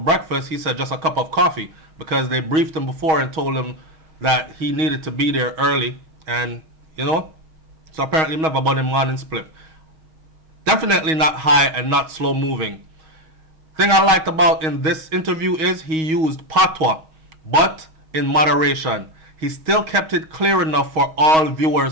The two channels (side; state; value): left; late; 6.3 ms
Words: He said, "Just a cup of coffee," because they briefed him before and told him that he needed to be there early, and so apparently never bought him morning split. Definitely not high and not slow moving. Thing I liked about in this interview is he used patois, but in moderation. He still kept it clear enough for all